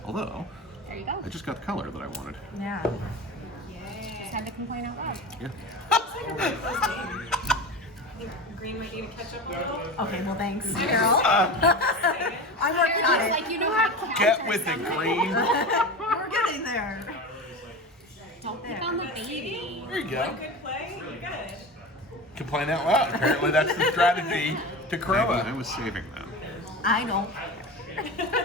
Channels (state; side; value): normal; both; correlation 0.28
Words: Although, There you go. I just got the color that I wanted. Yeah. Just had to complain out loud. Yeah. it's like a really close game. I think green might need to catch up a little. Okay, well, thanks, Carol. I'm working on it. Like, you know how to counter Get with it, something. Green. We're getting there. Don't pick on the baby. There you One go. good play, you're good. Complain out loud. Apparently, that's the strategy to Maybe I KROMA. was saving them. I don't.